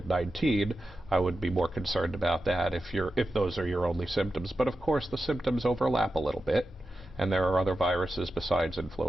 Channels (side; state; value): both; normal; correlation 0.91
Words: I would be more concerned about that if those are your only symptoms. But of course, the symptoms overlap a little bit. And there are other viruses besides